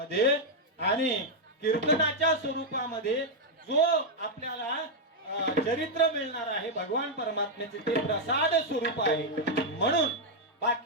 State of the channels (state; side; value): normal; both; correlation -0.01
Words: आणि कीर्तनाच्या स्वरूपामध्ये जो आपल्याला चरित्र मिळणार आहे भगवान परमात्म्याचे ते प्रसाद स्वरूप आहे. म्हणून